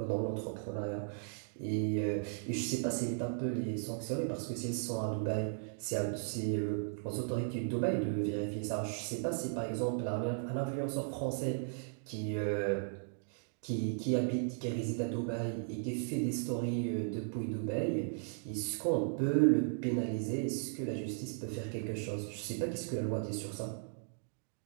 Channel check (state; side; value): silent; left; digital silence